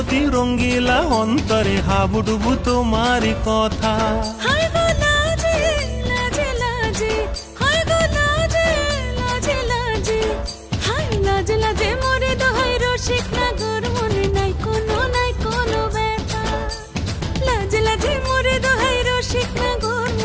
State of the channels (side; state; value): both; identical; correlation 1.00